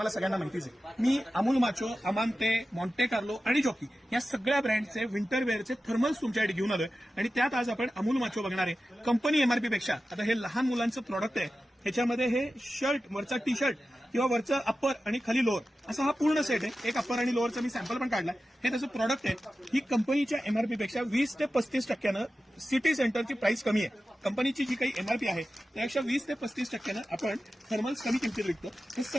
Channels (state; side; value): normal; both; correlation 0.93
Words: सगळ्यांना माहितीच आहे. मी अमूल माचो, अमांते, मॉन्टे कार्लो आणि जॉकी या सगळ्या ब्रँडचे विंटर वेअरचे थर्मल्स तुमच्यासाठी घेऊन आलोय आणि त्यात आज आपण अमूल माचो बघणार आहे. कंपनी एमआरपी पेक्षा आता हे लहान मुलांचं प्रॉडक्ट आहे. ह्याच्यामध्ये हे शर्ट, वरचा टी शर्ट किंवा वरचं अप्पर आणि खाली लोअर असा हा पूर्ण सेट आहे. एक अप्पर आणि लोअरचा मी सॅम्पल पण काढला. हे त्याचं प्रॉडक्ट आहे. ही कंपनीच्या एमआरपी पेक्षा 20 ते 35% सिटी सेंटरची प्राइस कमी आहे. कंपनीची जी काही एमआरपी आहे त्यापेक्षा 20 ते 35% आपण थर्मल्स कमी किमतीत विकतो. हे